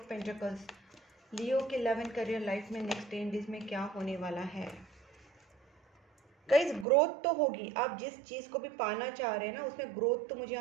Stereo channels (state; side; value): drops out; left; at 6.9 s